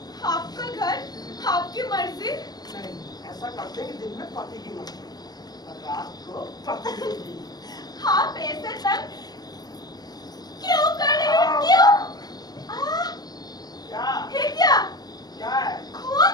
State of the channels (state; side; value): late; right; 0.19 ms